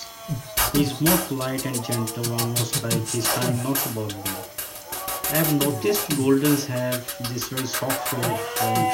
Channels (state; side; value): identical; both; correlation 1.00